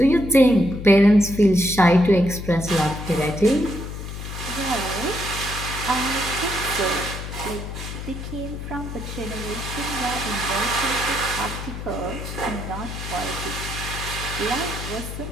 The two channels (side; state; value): left; noise; hum, 8 dB below the sound